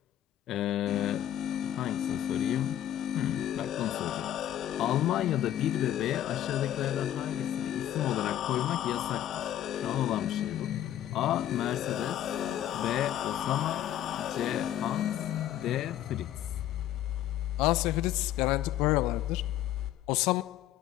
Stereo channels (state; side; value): quieter; right; 11.9 dB